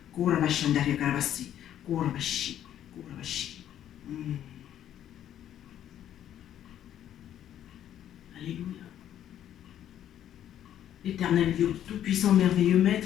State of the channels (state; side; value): quieter; right; 10.9 dB